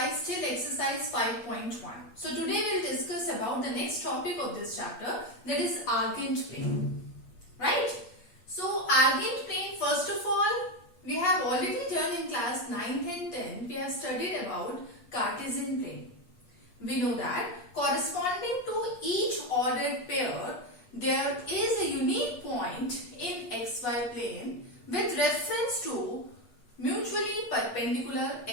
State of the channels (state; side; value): late; right; 8.4 ms